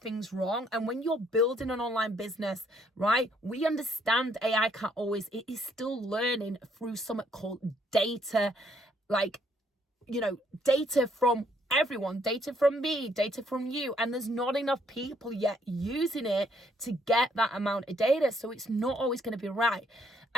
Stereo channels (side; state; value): both; normal; correlation 0.68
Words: things wrong. And when you're building an online business, right, we understand AI can't always, it is still learning through something called data, like, data from everyone, data from me, data from you. And there's not enough people yet using it to get that amount of data. So it's not always going to be right.